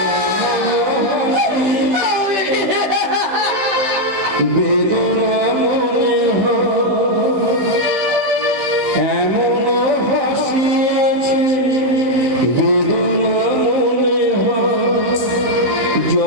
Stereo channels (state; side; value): late; left; 15 ms